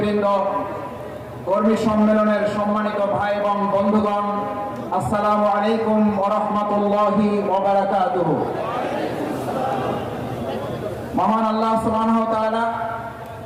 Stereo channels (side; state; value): both; identical; correlation 1.00